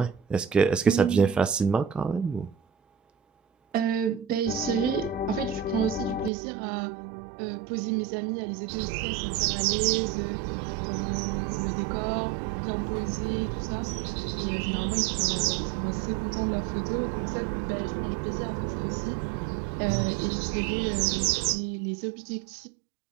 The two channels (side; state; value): left; drops out; at 6.3 s